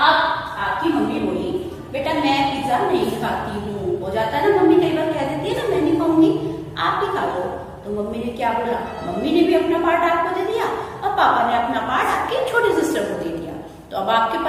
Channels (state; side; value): identical; both; correlation 1.00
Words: मम्मी बोली, बेटा मैं पिज्जा नहीं खाती हूँ। हो जाता है ना, मम्मी कई बार कह देती है ना मैं नहीं खाऊंगी, आप ही खा लो। तो मम्मी ने क्या बोला? मम्मी ने भी अपना पार्ट आपको दे दिया और पापा ने अपना पार्ट आपकी छोटी सिस्टर को दे दिया। तो अब आपके